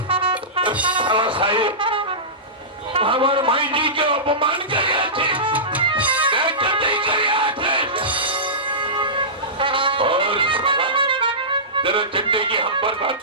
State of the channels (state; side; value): normal; both; correlation -0.19